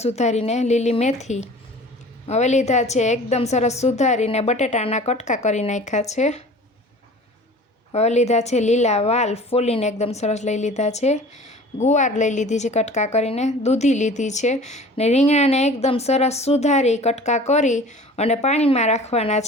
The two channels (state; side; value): normal; both; correlation 0.44